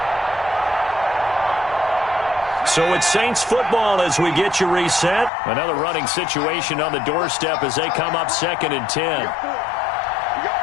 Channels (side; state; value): right; drops out; at 5.3 s